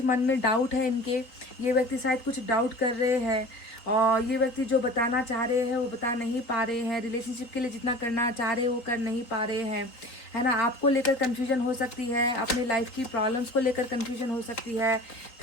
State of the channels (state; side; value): late; right; 3.9 ms